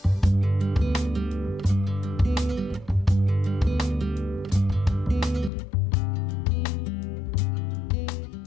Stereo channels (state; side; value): drops out; right; at 5.5 s